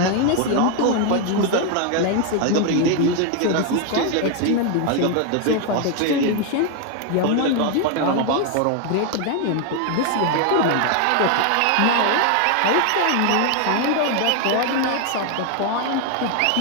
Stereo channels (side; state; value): both; different; correlation 0.01